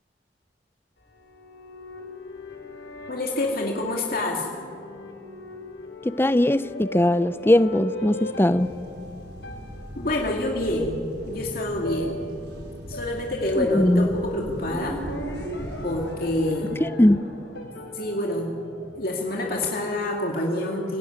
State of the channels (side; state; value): both; normal; correlation 0.71